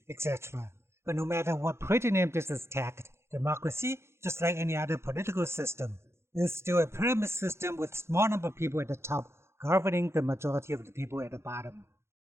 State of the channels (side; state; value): left; late; 0.13 ms